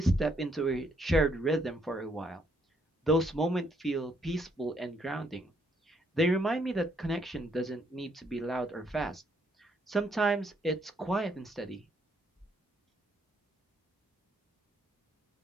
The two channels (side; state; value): both; normal; correlation 0.71